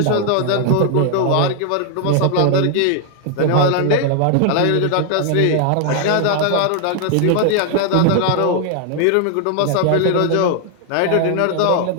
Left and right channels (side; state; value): both; different; correlation 0.00